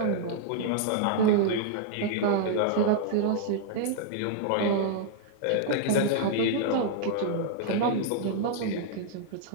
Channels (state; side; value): different; both; correlation -0.01